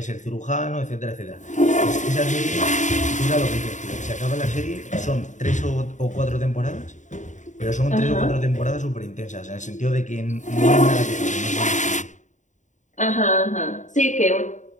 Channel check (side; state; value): right; late; 0.36 ms